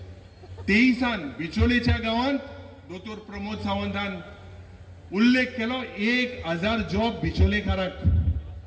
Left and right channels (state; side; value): identical; both; correlation 1.00